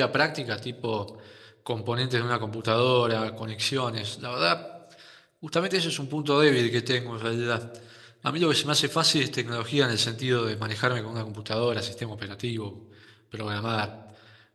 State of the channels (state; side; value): identical; both; correlation 1.00